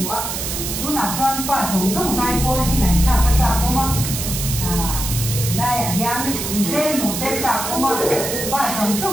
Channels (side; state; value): right; noise; hiss, 4 dB below the sound